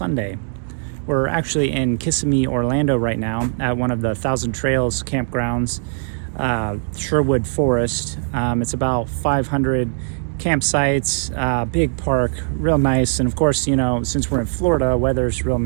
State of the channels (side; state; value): left; silent; digital silence